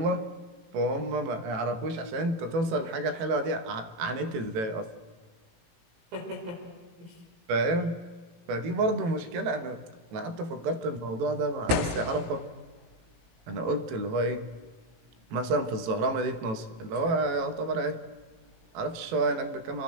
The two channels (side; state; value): left; late; 18 ms